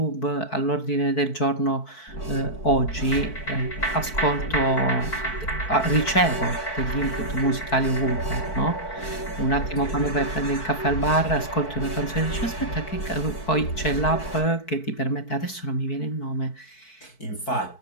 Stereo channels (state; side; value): late; right; 4.6 ms